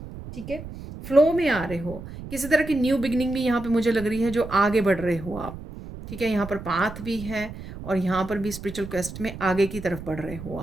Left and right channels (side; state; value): right; noise; rumble, 12 dB below the sound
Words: ठीक है। फ्लो में आ रहे हो, किसी तरह की न्यू बिगनिंग भी यहाँ पे मुझे लग रही है, जो आगे बढ़ रहे हो आप, ठीक है। यहाँ पर पाथ भी है और यहाँ पर भी स्पिरिचुअल क्वेस्ट में आगे की तरफ बढ़ रहे हो